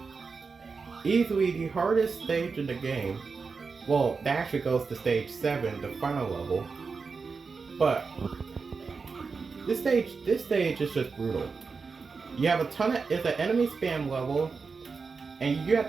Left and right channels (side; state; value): left; quieter; 4.8 dB